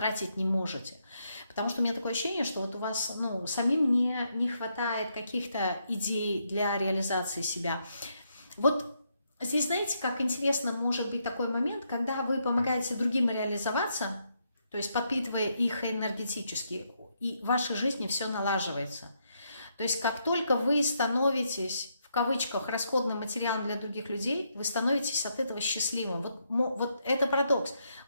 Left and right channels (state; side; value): inverted; both; correlation -0.78